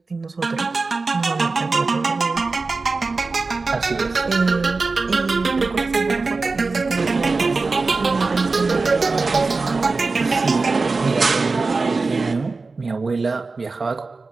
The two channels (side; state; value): left; quieter; 3.9 dB